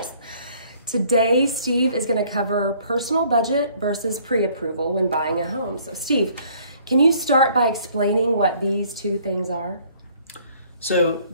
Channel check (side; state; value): both; inverted; correlation -0.59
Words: Today, Steve is going to cover personal budget versus pre-approval when buying a home. So Steve, can you start by explaining what these two things are? So